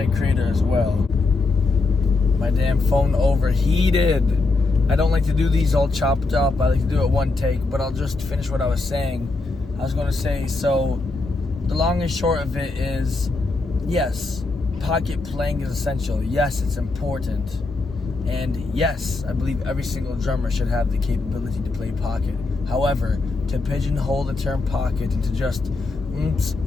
creator as well. My damn phone overheated. I don't like to do these all chopped up. I like to do it one take, but I'll just finish what I was saying. I was going to say, so the long and short of it is, yes, pocket playing is essential. Yes, it's important. And yes, I believe every single drummer should have the capability to play pocket. However, to pigeonhole the term pocket into just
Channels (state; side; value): quieter; right; 3.5 dB